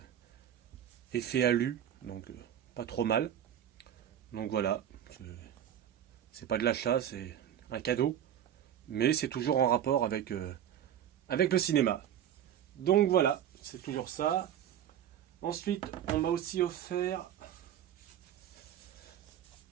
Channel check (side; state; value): left; quieter; 10.2 dB